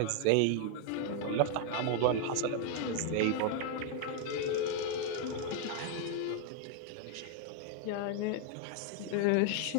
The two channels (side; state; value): both; different; correlation 0.00